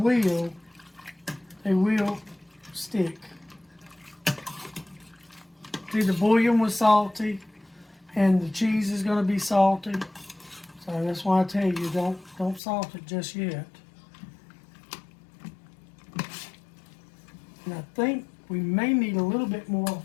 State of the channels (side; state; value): right; drops out; at 12.6 s